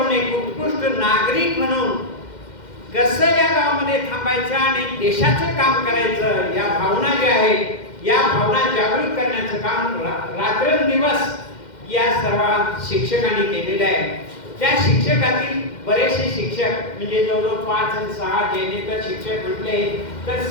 एक उत्कृष्ट नागरिक म्हणून कसं या गावामध्ये थांबायचं आणि देशाचं काम करायचं, या भावना ज्या आहेत या भावना जागृत करण्याचं काम रात्रंदिवस या सर्व शिक्षकांनी केलेलं आहे. त्या शिक्षकातील बरेचसे शिक्षक म्हणजे जवळजवळ 5 आणि 6 जेणेकर शिक्षक म्हटले तर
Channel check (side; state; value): right; late; 2.1 ms